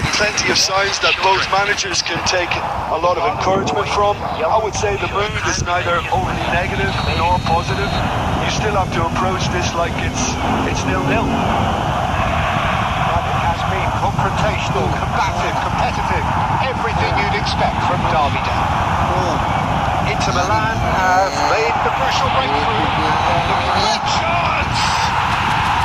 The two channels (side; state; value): both; identical; correlation 1.00